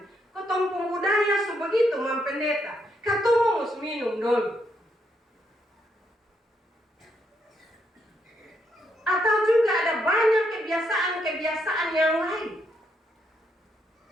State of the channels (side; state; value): both; normal; correlation 0.77